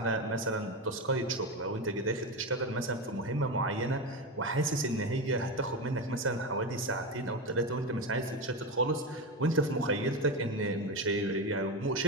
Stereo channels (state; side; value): normal; both; correlation 0.17